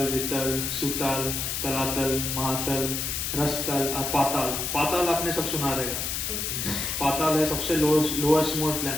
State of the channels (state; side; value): noise; left; hiss, 2 dB below the sound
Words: Vitala, सुतल, तलातल, महातल, रसतल और पाताल। पाताल आपने सब सुना रहेगा। पाताल है सबसे लोएस्ट मोस्ट